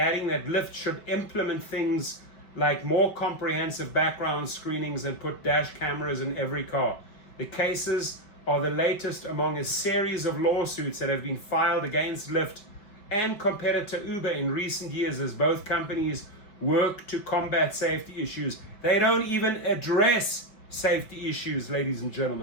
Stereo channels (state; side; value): late; right; 5.2 ms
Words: that Lyft should implement things like more comprehensive background screenings and put dash cameras in every car. The cases are the latest among a series of lawsuits that have been filed against Lyft and competitor Uber in recent years as both companies work to combat safety issues. They don't even address safety issues, ladies and